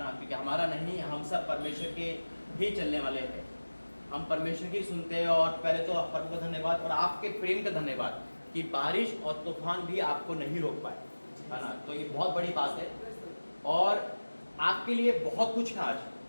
क्योंकि हमारा नहीं, हम सब परमेश्वर के ही चलने वाले हैं। हम परमेश्वर की सुनते हैं। और पहले तो प्रभु का धन्यवाद और आपके प्रेम का धन्यवाद कि बारिश और तूफान भी आपको नहीं रोक पाए, है ना। तो ये बहुत बड़ी बात है और आपके लिए बहुत कुछ है आज।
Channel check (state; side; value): inverted; both; correlation -1.00